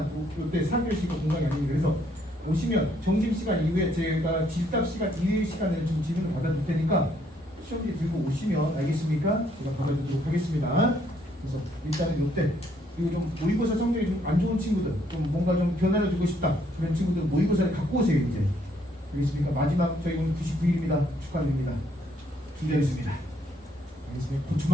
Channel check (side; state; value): both; normal; correlation 0.69